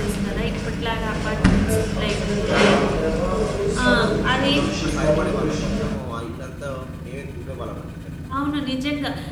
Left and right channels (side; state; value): both; identical; correlation 1.00